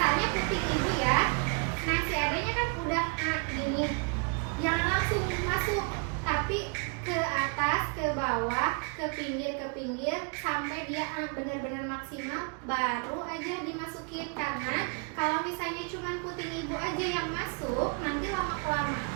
puting ibu ya, nah si adanya kan udah gini, jangan langsung masuk, tapi ke atas, ke bawah, ke pinggir sampai dia benar-benar maksimal, baru aja dimasukin. Karena kalau misalnya cuma puting ibu aja yang masuk, nanti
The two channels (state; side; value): quieter; left; 37.0 dB